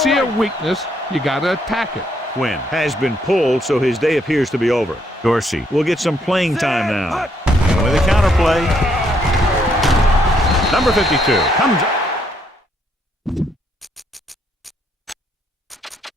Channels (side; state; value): both; normal; correlation 0.72